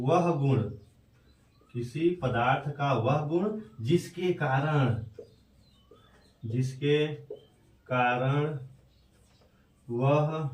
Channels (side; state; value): both; identical; correlation 1.00